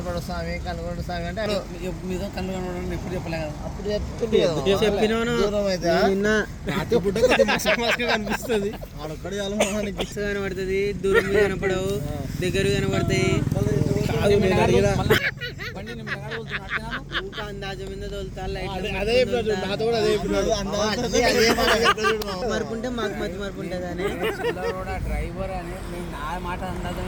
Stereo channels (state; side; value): identical; both; correlation 1.00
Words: స్వామి కనుగొండు స్వామి అంటే మీద కళ్ళు కనబడడం ఎప్పుడు చెప్పలే కదా. అప్పుడు చెప్పినాను కనిపిస్తుంది ఆడొక్కడే కనబడుతుంది, దూరం కనపడవు, దగ్గర కనబడతాయి. అందాజ మీద తోలుతారు, మరుపుంటే మాకు మధ్య మరుపు ఉంటుంది అని డ్రైవర్ అని నా మాట